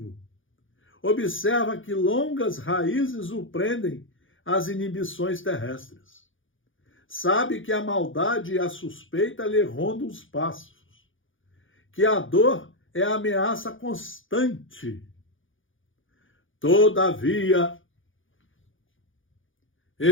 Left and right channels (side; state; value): right; late; 0.57 ms